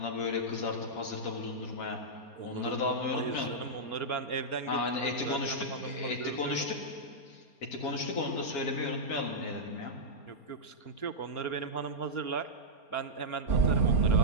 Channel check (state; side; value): late; right; 4.3 ms